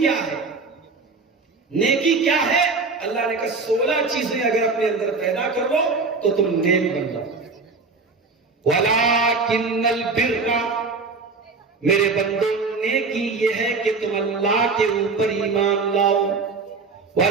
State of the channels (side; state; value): left; quieter; 4.2 dB